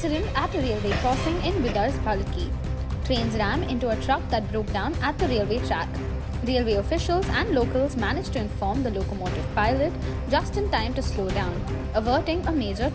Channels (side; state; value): both; identical; correlation 1.00